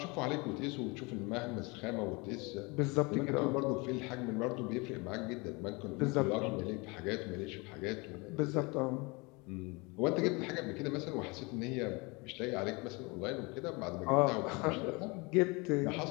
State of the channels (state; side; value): quieter; right; 27.3 dB